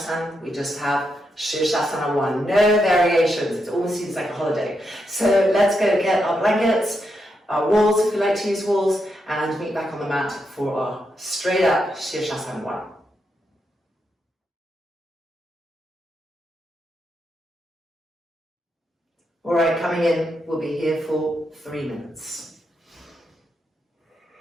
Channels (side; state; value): both; normal; correlation 0.83